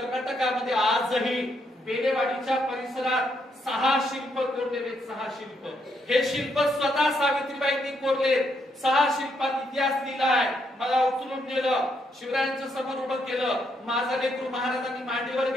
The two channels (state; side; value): normal; both; correlation 0.76